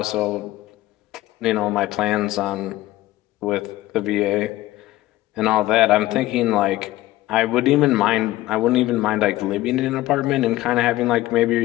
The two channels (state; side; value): quieter; right; 16.7 dB